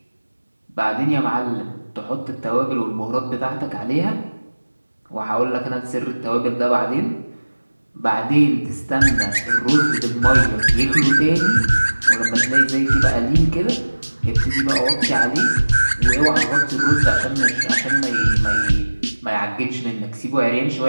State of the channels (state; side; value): inverted; both; correlation -1.00